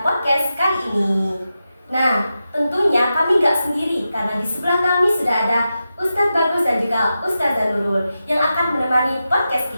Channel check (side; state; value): both; inverted; correlation -0.91